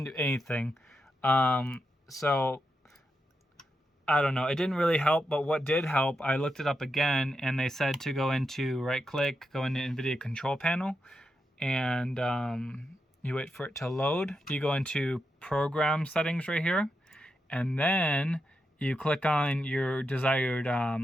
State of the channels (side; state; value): both; normal; correlation 0.86